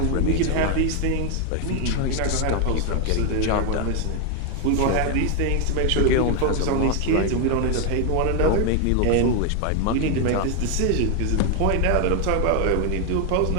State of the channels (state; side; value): different; both; correlation 0.01